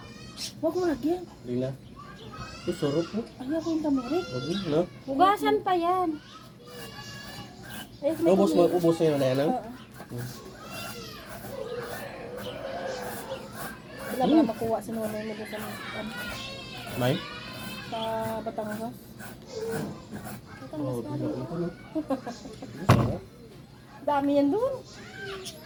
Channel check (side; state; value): both; identical; correlation 1.00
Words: Huwag mo lagyan. Lila. Ito, sarap po. Ayoko yung tamirik. Huwag mo, no? Hugasan pa yan. Ayos, may Ubos mo, tamirik. ubos na yun na yan, no? Oo. Wala mo na makuha sa nonoy mo doon May? sa Batangas. Oo, ito, no? Sarap. Dami yan doon.